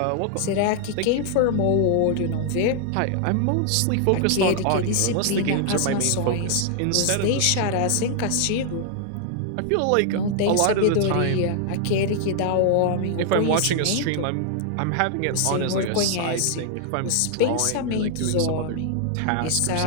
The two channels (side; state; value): both; different; correlation 0.00